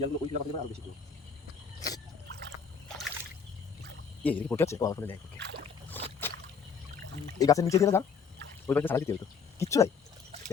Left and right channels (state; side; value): quieter; right; 5.9 dB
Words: জায়গাগুলো ওই জায়গা আরও বেশি ছিল। এই পড়ে আছে। ও আমার দেখ, ওকে এই গাছের নিচে দিয়ে যা, ওই পাশে সারা দিতে হতো, কিচ্ছু নাই।